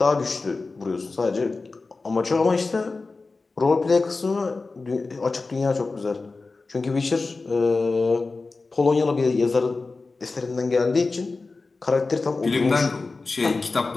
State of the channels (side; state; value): right; quieter; 3.8 dB